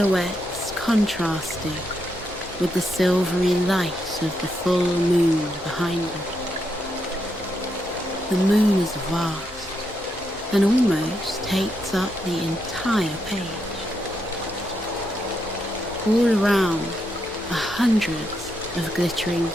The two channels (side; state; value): both; normal; correlation 0.81